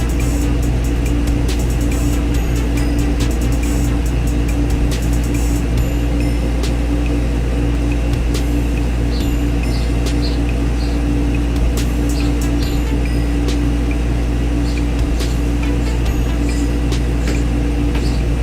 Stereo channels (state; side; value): identical; both; correlation 1.00